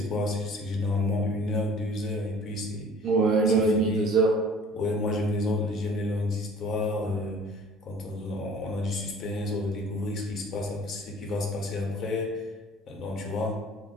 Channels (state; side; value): normal; both; correlation 0.49